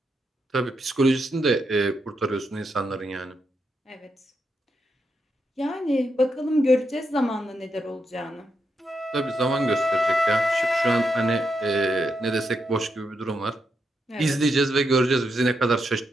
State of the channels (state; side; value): normal; both; correlation 0.83